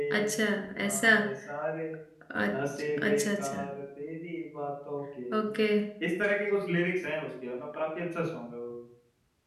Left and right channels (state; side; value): identical; both; correlation 1.00